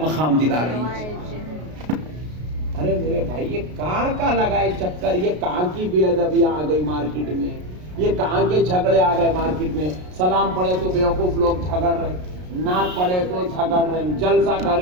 مقام دلا رہی ہے۔ ارے میرے بھائی یہ کہاں کا لگائے چکر، یہ کہاں کی بے ادبی آ گئی مارکیٹ میں، یہ کہاں کے جھگڑے آ گئے مارکیٹ میں، سلام پڑھے تو بیوقوف لوگ جھگڑ رہے، نعت پڑھے تو جھگڑ رہے، جلسہ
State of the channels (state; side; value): late; left; 33 ms